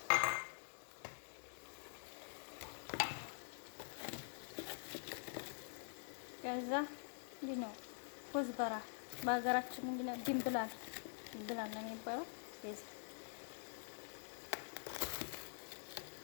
ከዛ ነው ኮዝበራ በሀገራችን ምንድነው ድንብላል ነው የሚባለው።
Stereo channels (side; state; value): right; silent; digital silence